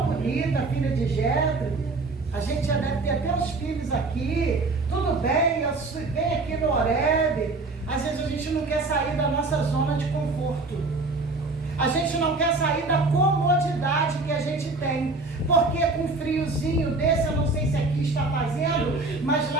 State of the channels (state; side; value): quieter; left; 3.4 dB